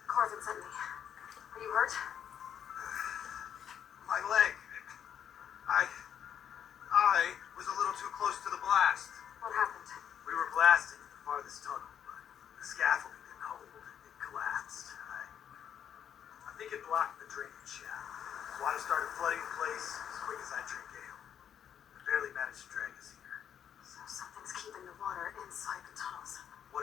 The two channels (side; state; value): right; quieter; 8.9 dB